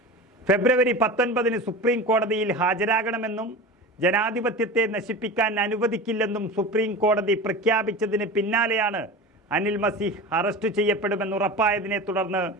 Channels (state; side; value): normal; both; correlation 0.31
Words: ഫെബ്രുവരി 19-ന് സുപ്രീം കോടതിയിൽ ഹാജരാകണമെന്നും ജനാധിപത്യത്തെ നശിപ്പിക്കാൻ അനുവദിക്കില്ലെന്നും സുപ്രീം കോടതി പ്രഖ്യാപിച്ചതിന് പിന്നാലെയാണ് അനിൽ മസീഹ് അറസ്റ്റ് ചെയ്യപ്പെടുമെന്ന് ഉറപ്പായതിനെ തുടർന്ന്